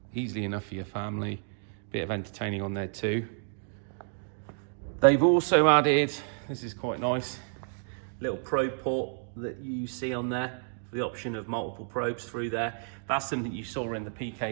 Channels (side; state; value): left; silent; 58 dB below the other